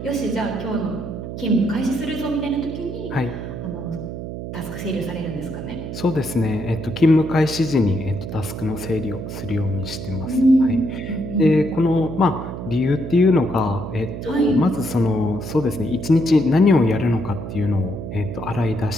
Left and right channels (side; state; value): right; noise; hum, 8 dB below the sound